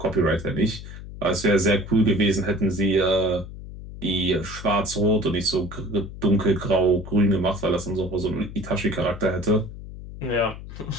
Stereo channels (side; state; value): left; noise; hum, 12 dB below the sound